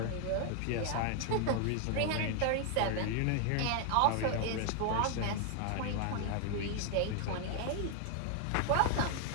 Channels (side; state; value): both; different; correlation 0.00